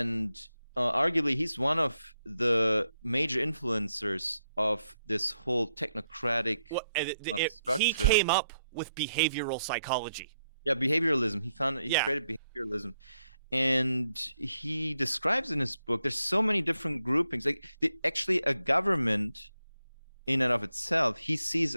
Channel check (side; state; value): both; inverted; correlation -0.81